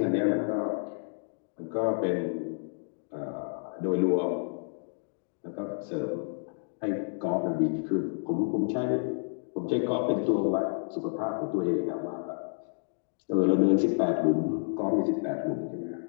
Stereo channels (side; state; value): right; silent; digital silence